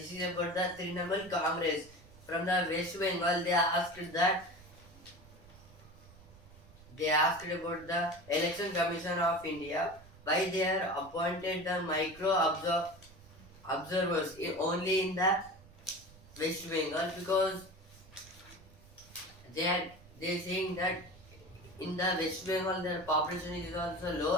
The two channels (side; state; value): right; noise; rumble, 22 dB below the sound